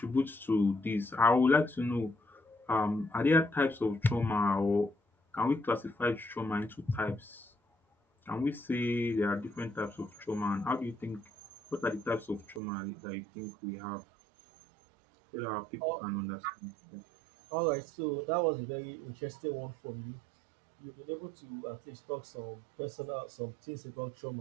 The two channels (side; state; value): left; drops out; at 12.6 s